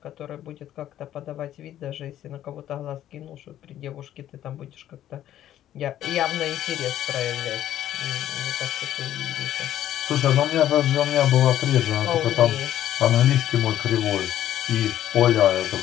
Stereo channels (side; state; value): right; quieter; 12.0 dB